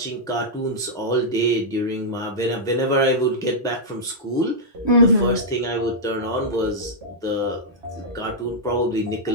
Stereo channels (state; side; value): normal; both; correlation -0.08